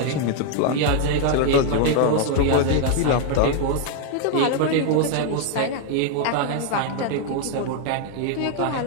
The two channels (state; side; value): different; both; correlation 0.00